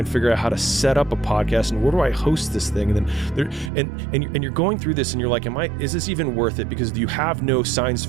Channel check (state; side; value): drops out; left; at 3.7 s